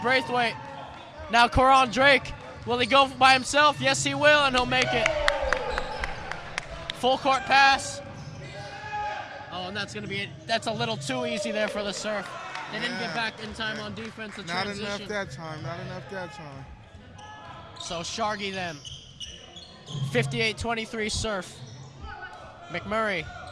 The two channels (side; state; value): both; identical; correlation 1.00